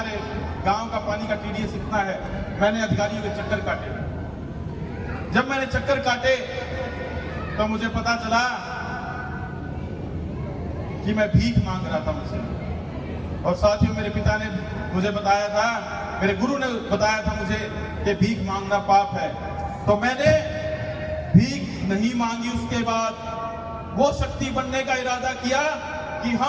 गांव का पानी का TDS इतना है, मैंने अधिकारियों के चक्कर काटे। जब मैंने चक्कर काटे तो मुझे पता चला कि मैं भीख मांग रहा था मुझसे। और साथियों, मेरे पिता ने मुझे बताया था, मेरे गुरु ने बताया था मुझे कि भीख मांगना पाप है। तो मैंने भीख नहीं मांगी। उसके बाद वो शक्ति बनने का इरादा किया कि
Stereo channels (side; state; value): both; identical; correlation 1.00